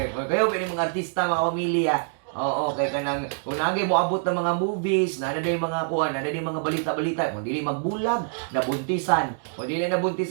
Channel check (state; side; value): silent; left; digital silence